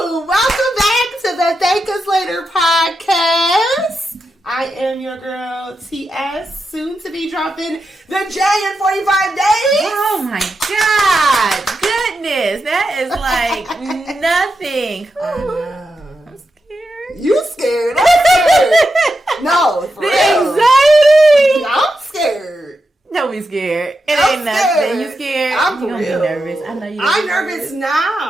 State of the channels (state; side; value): normal; both; correlation 0.87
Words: I am your girl, TS, soon to be dropping the J in 45 days. Oh my God. Goodness. That is like nothing. I know. I'm scared. You scared? I'm scared. No, for The real. anxiety. I'm scared. Don't be scared. It I'm ain't nothing. scared. You scared? I'm for you gonna real. be nervous. I know you're I'm nervous